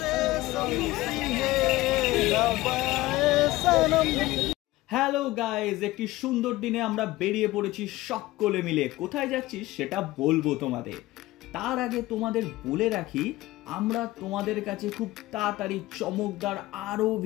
হ্যালো গাইজ, একটি সুন্দর দিনে আমরা বেরিয়ে পড়েছি সকলে মিলে। কোথায় যাচ্ছি সেটা বলবো তোমাদের, তার আগে তোমাদের বলে রাখি আমরা তোমাদের কাছে খুব তাড়াতাড়ি চমকদার আরো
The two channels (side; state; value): right; quieter; 18.0 dB